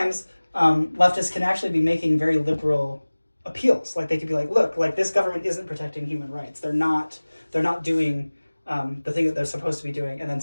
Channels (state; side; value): inverted; both; correlation -1.00